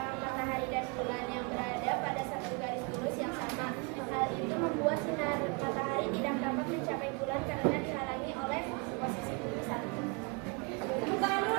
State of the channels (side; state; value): left; quieter; 31.4 dB